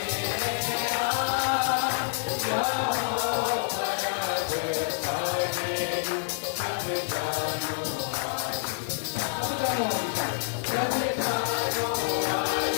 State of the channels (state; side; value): silent; right; digital silence